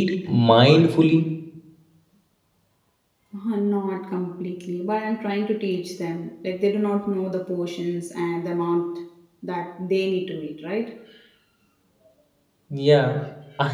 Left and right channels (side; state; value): both; identical; correlation 1.00